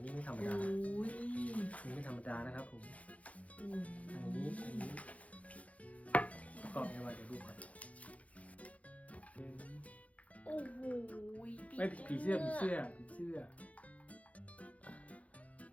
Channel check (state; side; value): late; right; 0.067 ms